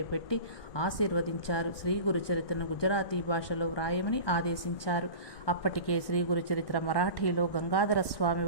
పెట్టి ఆశీర్వదించారు. శ్రీ గురు చరిత్రను గుజరాతీ భాషలో వ్రాయమని ఆదేశించారు. అప్పటికే శ్రీ గురు చరిత్ర మరాఠీలో గంగాధర స్వామి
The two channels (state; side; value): late; right; 1.6 ms